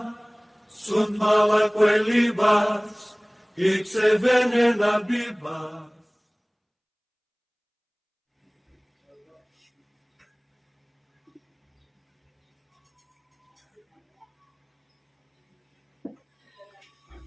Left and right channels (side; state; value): both; identical; correlation 1.00